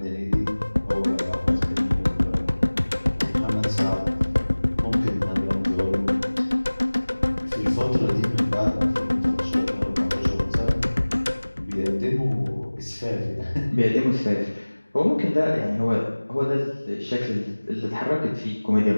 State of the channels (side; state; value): both; inverted; correlation -1.00